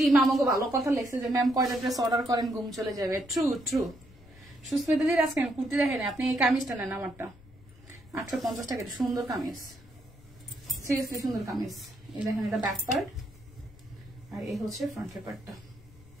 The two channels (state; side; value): noise; left; rumble, 23 dB below the sound